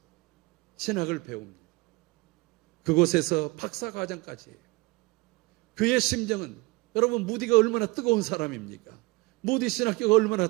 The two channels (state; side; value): quieter; left; 24.7 dB